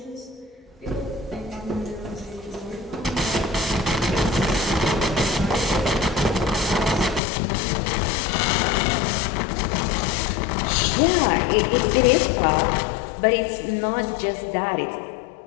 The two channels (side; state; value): right; drops out; at 7.2 s